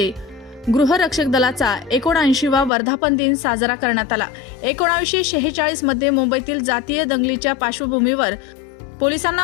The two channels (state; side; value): drops out; right; at 2.7 s